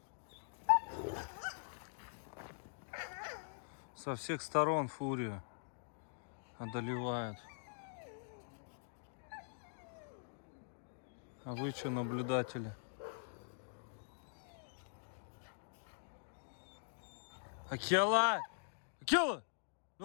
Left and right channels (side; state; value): right; silent; digital silence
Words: Со всех сторон фурию одолевают. А вы что, наблюдатели? Акела! Акела!